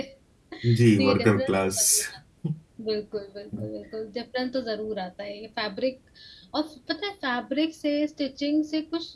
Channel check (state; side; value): identical; both; correlation 1.00